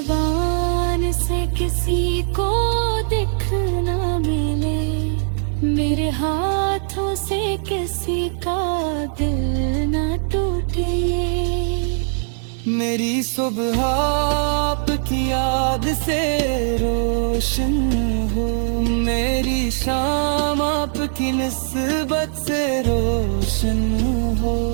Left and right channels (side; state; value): left; silent; digital silence